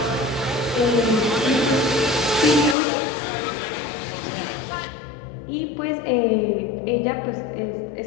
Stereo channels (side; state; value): right; drops out; at 2.8 s